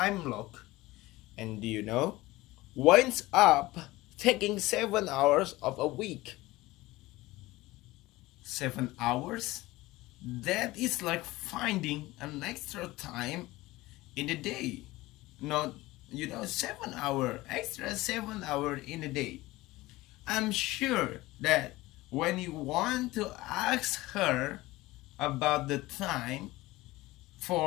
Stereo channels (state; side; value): quieter; right; 19.1 dB